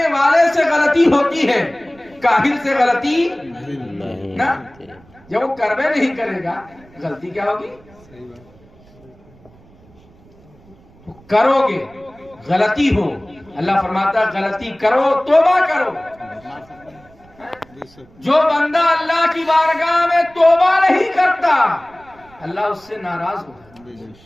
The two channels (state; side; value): noise; right; rumble, 27 dB below the sound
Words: والے سے غلطی ہوتی ہے، کاہل سے غلطی نہ، جب وہ کروے نہیں کرے گا غلطی کیا ہوگی؟ کرو گے غلطی ہو، اللہ فرماتا ہے غلطی کرو توبہ کرو۔ جو بندہ اللہ کی بارگاہ میں توبہ نہیں کرتا اللہ اس سے ناراض ہوتا